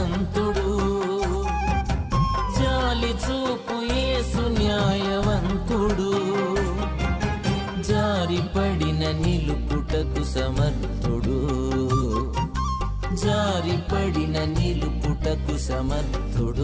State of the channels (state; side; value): identical; both; correlation 1.00